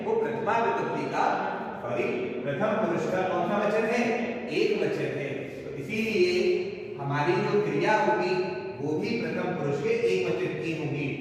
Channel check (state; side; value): identical; both; correlation 1.00